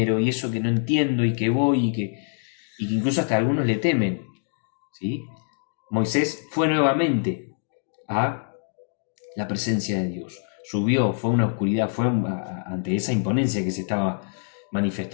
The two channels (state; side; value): silent; right; digital silence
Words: y eso que no entiendo y que voy y que incluso hasta algunos le temen, ¿sí? Moisés fue nuevamente a la presencia de Dios. Subió, fue una oscuridad, fue ante esa imponencia que se estaba